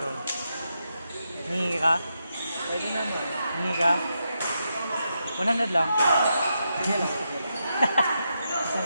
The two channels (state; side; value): inverted; both; correlation -0.84